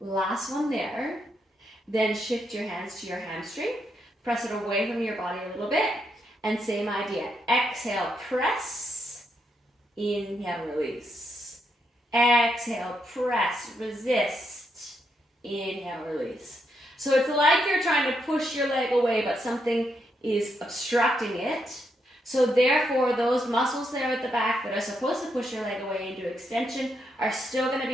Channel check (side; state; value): both; normal; correlation 0.79